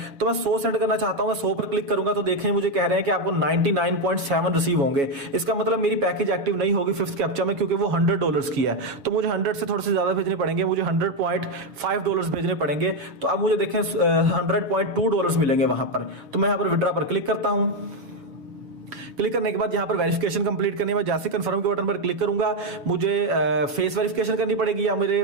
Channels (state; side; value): late; left; 7.2 ms